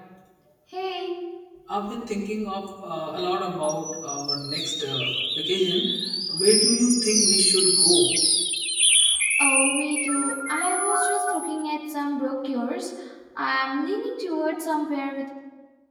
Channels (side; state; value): both; identical; correlation 1.00